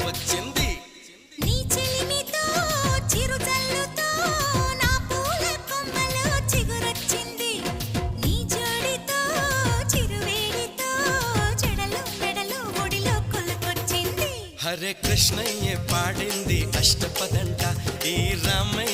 నీ చెలిమితో చిరుజల్లుతో నా పూల కొమ్మలో చిగురొచ్చింది నీ జోడితో చిరువేడితో చెడలు మెడలు ఒడిలో కొలుకొచ్చింది హరే కృష్ణయ్య పాడింది అష్టపదంట ఈ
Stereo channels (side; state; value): both; identical; correlation 1.00